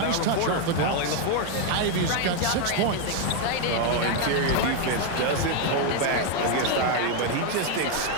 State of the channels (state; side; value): different; both; correlation 0.01